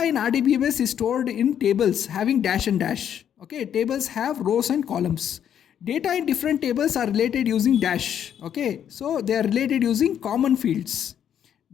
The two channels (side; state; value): right; quieter; 9.3 dB